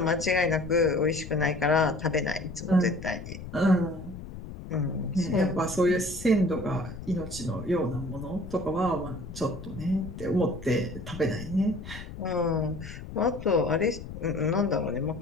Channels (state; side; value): noise; left; rumble, 12 dB below the sound